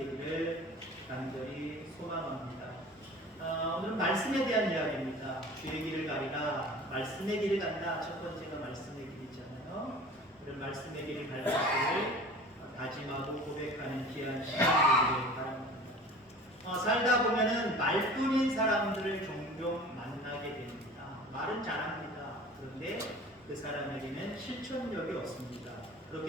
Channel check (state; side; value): normal; both; correlation 0.41